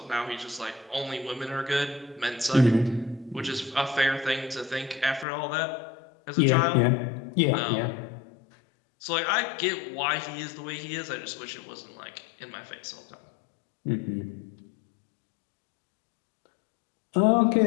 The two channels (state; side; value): drops out; right; at 5.2 s